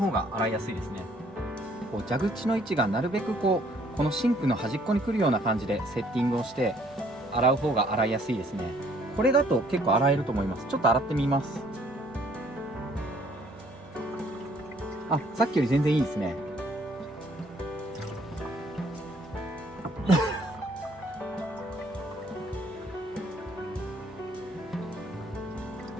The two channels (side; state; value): both; normal; correlation 0.62